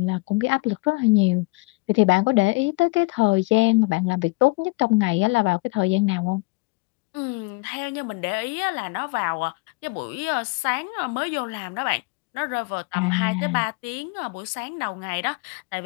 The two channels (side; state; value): right; quieter; 27.2 dB